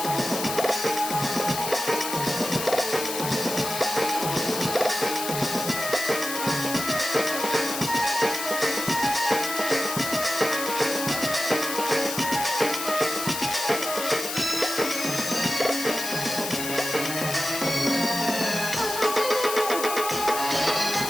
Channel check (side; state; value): left; noise; hiss, 5 dB below the sound